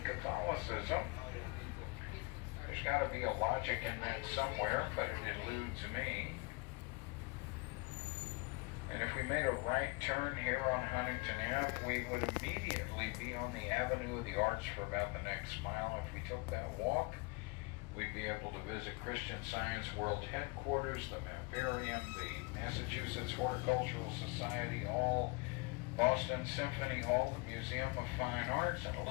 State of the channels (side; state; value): right; quieter; 27.5 dB